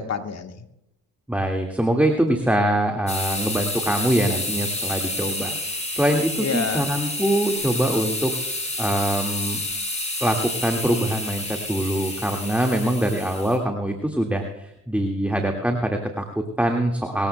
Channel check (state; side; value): normal; both; correlation 0.68